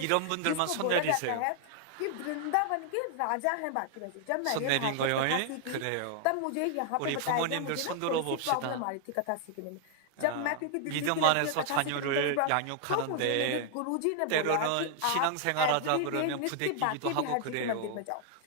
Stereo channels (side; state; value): both; different; correlation 0.00